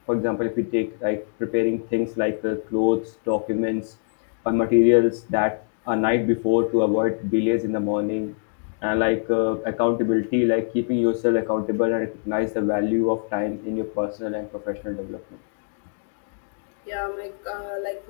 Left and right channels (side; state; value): right; silent; digital silence